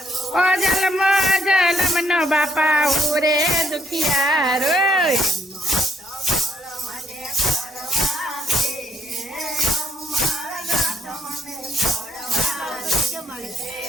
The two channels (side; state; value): both; normal; correlation 0.70